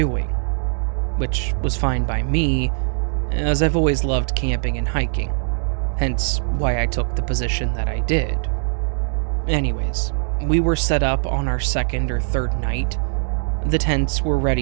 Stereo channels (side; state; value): left; silent; 65 dB below the other